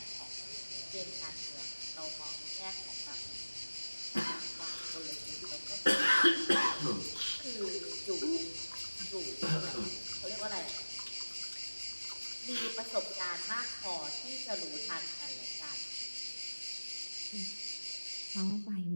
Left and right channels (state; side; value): inverted; both; correlation -1.00